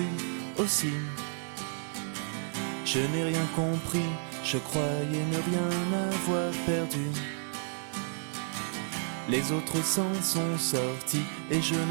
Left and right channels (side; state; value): left; silent; 57 dB below the other